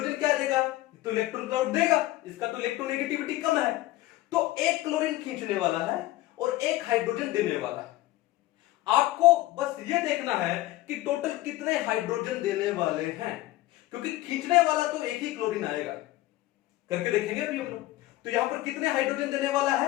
क्या देगा, तो इलेक्ट्रॉन क्लाउड देगा, इसका तो इलेक्ट्रोनेगेटिविटी कम है, तो 1 क्लोरीन खींचने वाला है और 1 हाइड्रोजन देने वाला है। आपको बस ये देखना है कि टोटल कितने हाइड्रोजन देने वाले हैं, क्योंकि खींचने वाला तो 1 ही क्लोरीन आएगा। करके देखेंगे अभी हम लोग। तो यहां पर कितने हाइड्रोजन देने वाला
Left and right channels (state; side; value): quieter; right; 17.0 dB